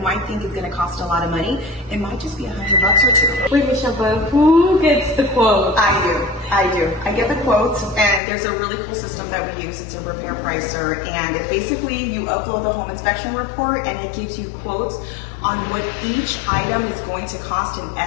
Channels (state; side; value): drops out; right; at 8.2 s